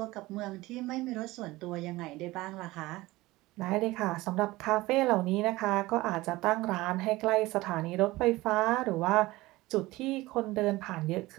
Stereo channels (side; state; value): left; quieter; 19.3 dB